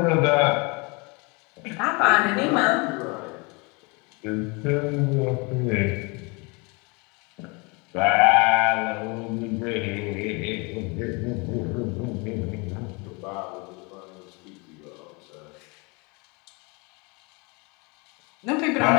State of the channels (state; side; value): quieter; right; 29.4 dB